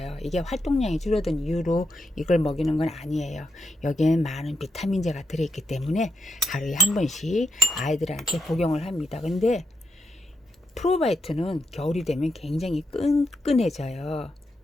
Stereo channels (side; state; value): both; normal; correlation 0.82